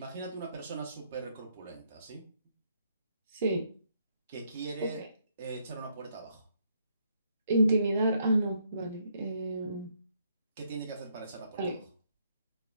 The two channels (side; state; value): both; inverted; correlation -0.73